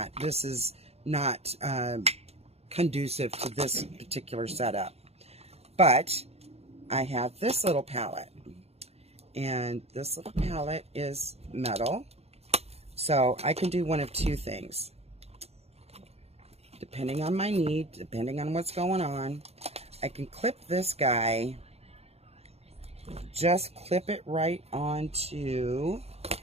This is not conducive to this particular setup. But I have this little palette, and this little palette is metal. So I can do one of two things. Depending on my need, depending on what's going on, I can clip this guy, just clip it right onto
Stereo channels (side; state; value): left; late; 0.30 ms